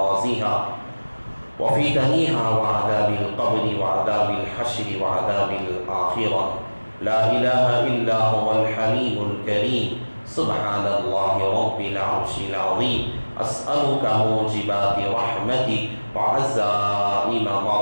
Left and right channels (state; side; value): inverted; both; correlation -1.00